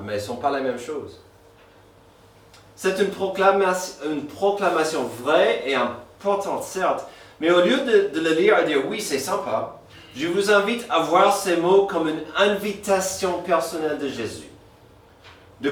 mais elles ne sont pas la même chose. C'est une proclamation vraie et importante, certes, mais au lieu de le lire et dire « Oui, c'est sympa », je vous invite à voir ces mots comme une invitation personnelle de Jésus. De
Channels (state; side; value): identical; both; correlation 1.00